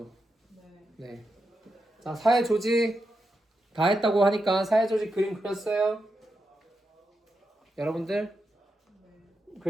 네. 네. 자, 사회 조직 다 했다고 하니까 사회 조직 그림 그렸어요? 여러분들? 네.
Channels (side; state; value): both; normal; correlation 0.86